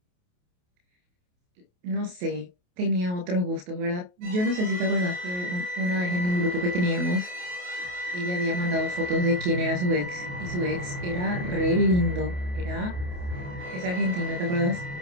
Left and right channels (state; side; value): late; left; 28 ms